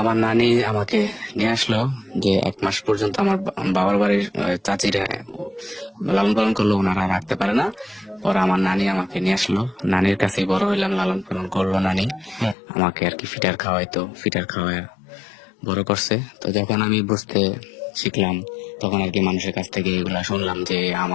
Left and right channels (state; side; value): drops out; right; at 12.6 s